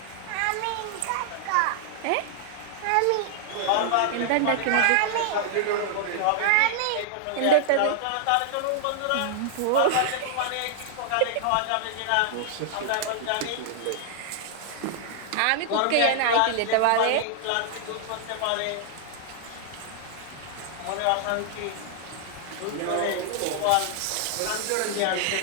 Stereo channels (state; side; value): different; both; correlation -0.01